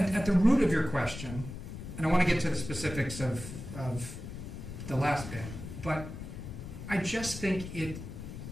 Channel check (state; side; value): noise; left; rumble, 9 dB below the sound